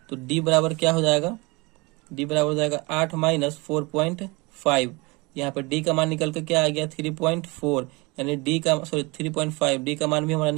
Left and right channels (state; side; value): quieter; left; 25.8 dB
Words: तो d बराबर क्या हो जाएगा, d बराबर हो जाएगा 8 माइनस 4.5। यहाँ पे d का मान निकल के क्या आ गया 3.4, यानी d का 3.5, d का मान भी हमारा